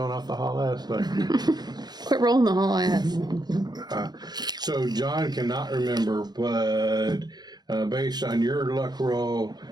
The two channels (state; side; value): late; left; 0.20 ms